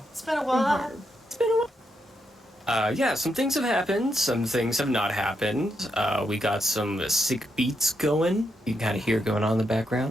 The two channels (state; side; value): normal; both; correlation 0.81